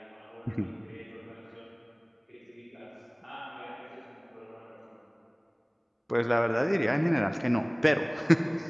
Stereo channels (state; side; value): identical; both; correlation 1.00